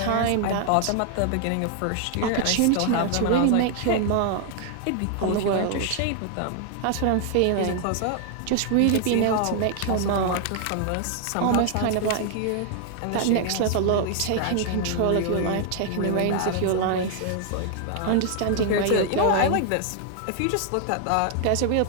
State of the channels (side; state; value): both; different; correlation 0.00